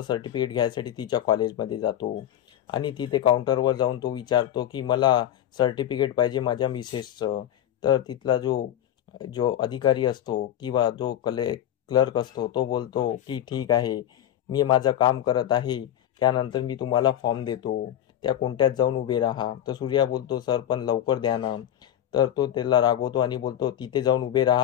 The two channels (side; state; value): right; quieter; 11.2 dB